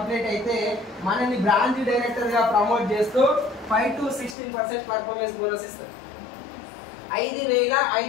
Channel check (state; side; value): drops out; right; at 4.4 s